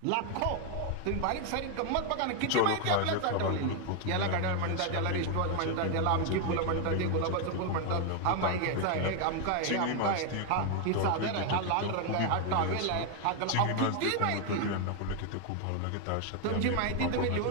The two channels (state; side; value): different; both; correlation 0.01